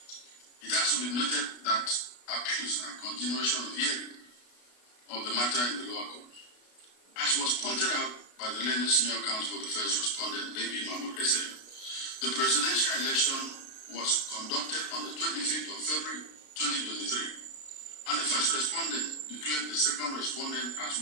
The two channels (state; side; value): late; right; 33 ms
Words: It has to be noted that appeals are a continuation of hearing of the matter in the lower court. As was pointed out by the learned senior counsel for the first respondent, A.B. Mahmoud SM, the presidential election was conducted on the 25th of February 2023, and the first respondent declared the second respondent as